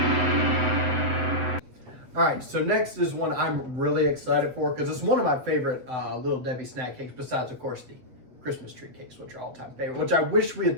All right, so next is one I'm really excited for because it's one of my favorite Little Debbie snack cakes, besides, of course, the Christmas tree cakes, which are all-time favorite, which I wish we had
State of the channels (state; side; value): late; left; 8.0 ms